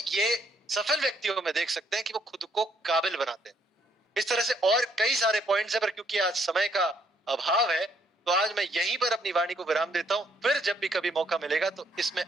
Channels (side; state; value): both; normal; correlation 0.70